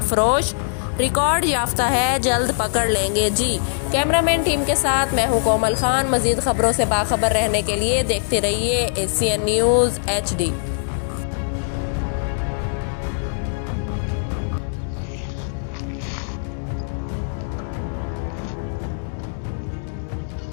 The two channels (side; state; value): right; silent; digital silence